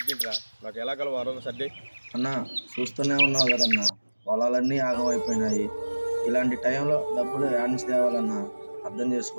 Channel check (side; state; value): both; inverted; correlation -1.00